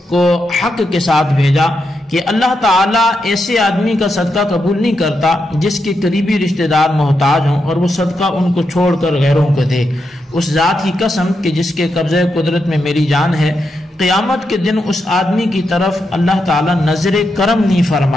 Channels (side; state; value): both; normal; correlation 0.84